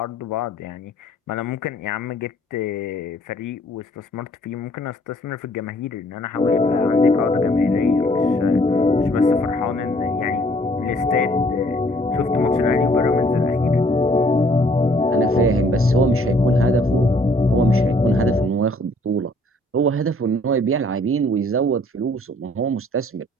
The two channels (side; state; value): both; normal; correlation 0.61